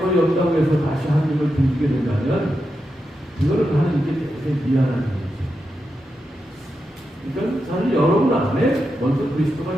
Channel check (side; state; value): both; normal; correlation 0.87